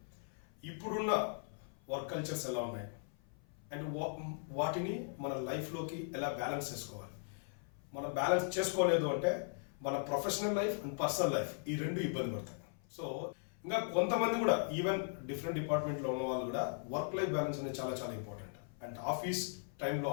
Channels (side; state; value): right; silent; 52 dB below the other